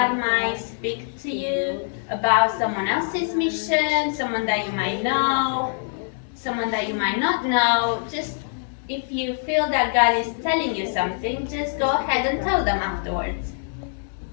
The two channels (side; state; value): right; silent; digital silence